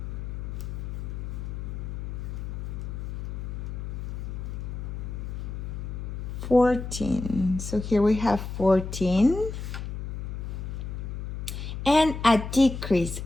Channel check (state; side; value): noise; left; hum, 6 dB below the sound